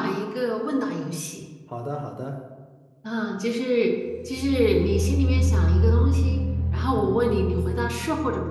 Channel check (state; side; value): identical; both; correlation 1.00